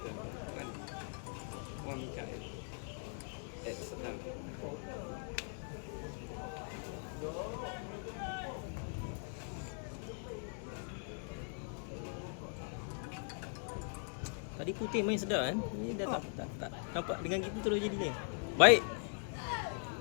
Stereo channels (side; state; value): right; silent; 51 dB below the other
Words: Wan Mikael. Sedang. Tadi putih main sedap kan? Ni dah tak nampak dengan kita terus jadi ni. Baik.